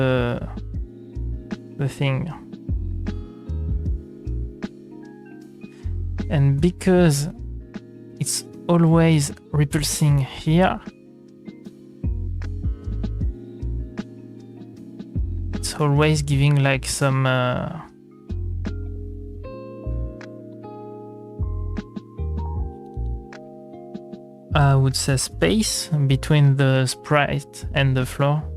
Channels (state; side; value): identical; both; correlation 1.00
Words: thing. And because it's always repulsing here, it's always giving like some I would say space between the sprite and the floor.